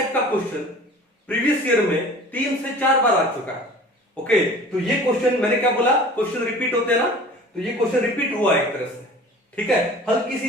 का क्वेश्चन प्रीवियस ईयर में 3 से 4 बार आ चुका है। ओके, तो ये क्वेश्चन मैंने क्या बोला, क्वेश्चन रिपीट होते हैं ना, तो ये क्वेश्चन रिपीट हुआ एक तरह से, ठीक है। हल्की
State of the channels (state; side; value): normal; both; correlation 0.43